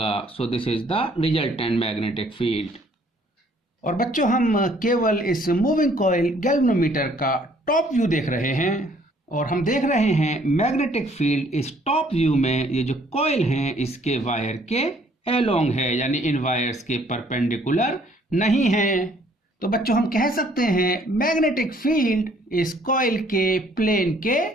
सो this is the resultant magnetic field. और बच्चों हम केवल इस मूविंग कॉइल गैल्वेनोमीटर का टॉप व्यू देख रहे हैं और हम देख रहे हैं मैग्नेटिक फील्ड इस टॉप व्यू में ये जो कॉइल हैं इसके वायर के अलोंग है, यानी इन वायर्स के परपेंडिकुलर नहीं है। तो बच्चों हम कह सकते हैं मैग्नेटिक फील्ड इस कॉइल के प्लेन के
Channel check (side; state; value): both; normal; correlation 0.61